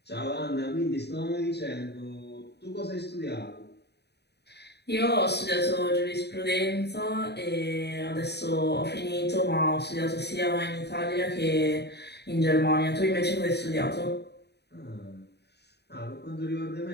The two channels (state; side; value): late; right; 0.48 ms